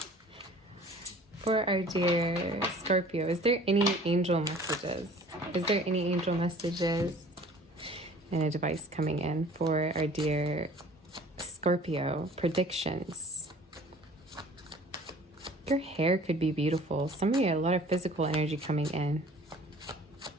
For our dear Scorpio, is there any angel messages? Is there any angel messages and advice coming in for our dear Scorpio, predictions. Your hair could be beautiful. Somebody had a lot of physical energy coming in.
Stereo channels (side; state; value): both; normal; correlation 0.49